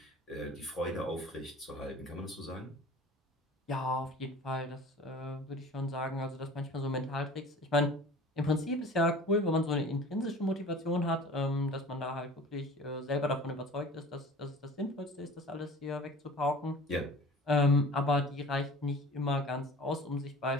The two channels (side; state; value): both; normal; correlation 0.42